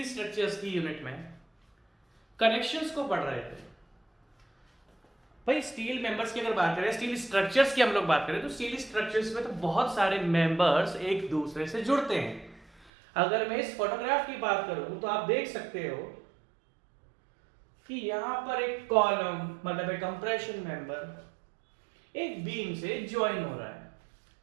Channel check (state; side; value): drops out; left; at 12.9 s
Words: स्ट्रक्चर्स की यूनिट में कनेक्शंस को पढ़ रहे थे। भाई स्टील मेंबर्स की अगर बात करें, स्टील स्ट्रक्चर्स की हम लोग बात करें तो स्टील स्ट्रक्चर्स में तो बहुत सारे मेंबर्स एक दूसरे से जुड़ते हैं। अगर मैं इस फोटोग्राफ की बात करूं तो आप देख सकते हो कि यहां पर एक कॉलम मतलब एक कंप्रेशन मेंबर एक बीम से ज्वाइन हो रहा है।